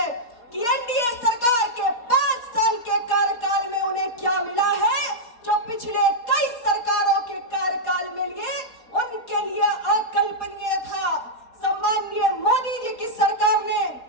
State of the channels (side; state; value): right; late; 4.2 ms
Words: कि एनडीए सरकार के 5 साल के कार्यकाल में उन्हें क्या मिला है जो पिछले कई सरकारों के कार्यकाल में लिए उनके लिए अकल्पनीय था। सम्माननीय मोदी जी की सरकार ने